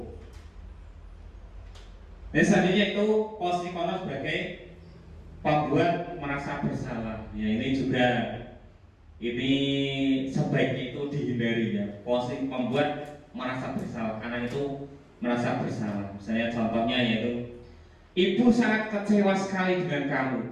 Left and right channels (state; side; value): identical; both; correlation 1.00